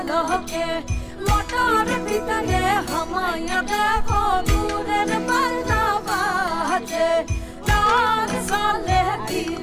মোটর ভিতরে হামায়া দেখো দূরের বাজনা বাজে। লাল সালে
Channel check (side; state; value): both; identical; correlation 1.00